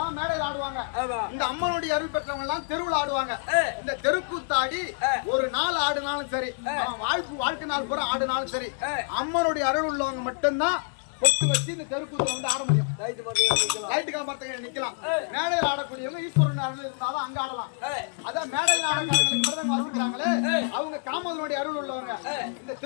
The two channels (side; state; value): right; silent; digital silence